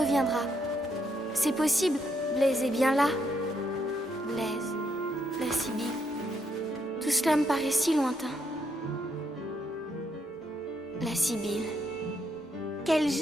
C'est possible, Blaise est bien là. Blaise, la Sibylle. Tout cela me paraît si lointain. La Sibylle. Quel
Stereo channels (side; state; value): both; normal; correlation 0.76